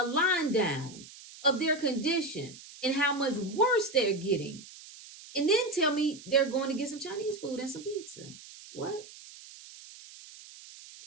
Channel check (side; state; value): right; noise; hiss, 18 dB below the sound